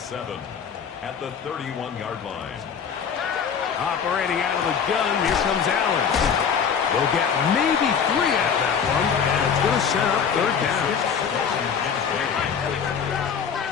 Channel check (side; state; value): right; quieter; 7.0 dB